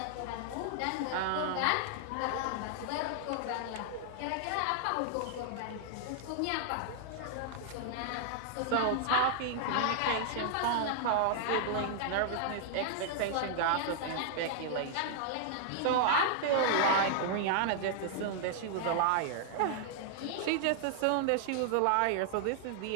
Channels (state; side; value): different; both; correlation -0.01